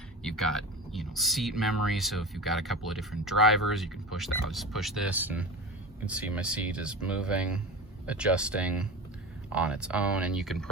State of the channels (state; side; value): normal; both; correlation 0.30